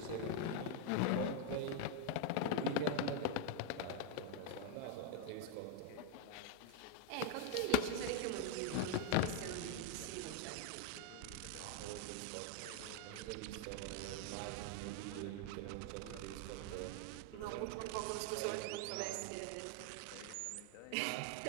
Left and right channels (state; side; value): different; both; correlation 0.01